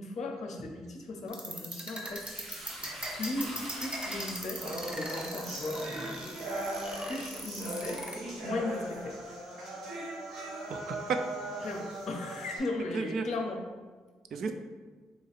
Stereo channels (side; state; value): both; normal; correlation 0.70